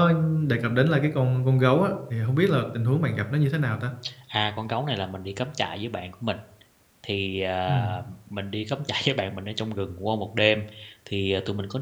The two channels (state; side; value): identical; both; correlation 1.00